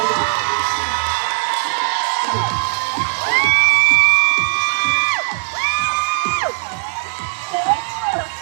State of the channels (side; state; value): left; silent; 67 dB below the other